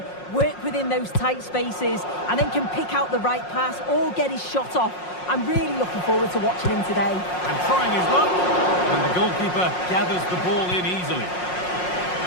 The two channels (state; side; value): late; right; 5.5 ms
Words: work within those tight spaces, and then can pick out the right pass or get his shot off. I'm really looking forward to watching him today. And trying his luck. And the goalkeeper gathers the ball in easily.